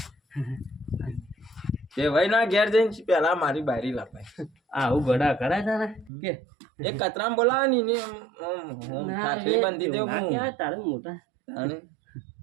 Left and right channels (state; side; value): drops out; left; at 6.1 s